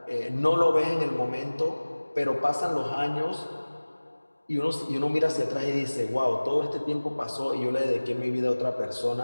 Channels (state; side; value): inverted; both; correlation -1.00